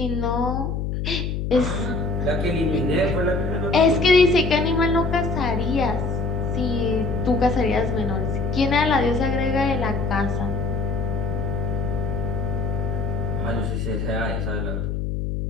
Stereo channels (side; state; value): left; noise; hum, 2 dB below the sound